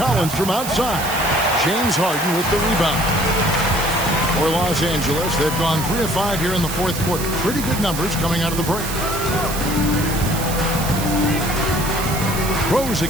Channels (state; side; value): noise; right; hiss, 7 dB below the sound